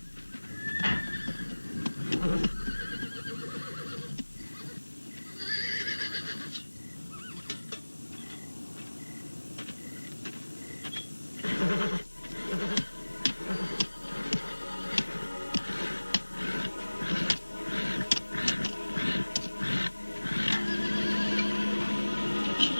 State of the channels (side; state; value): both; inverted; correlation -1.00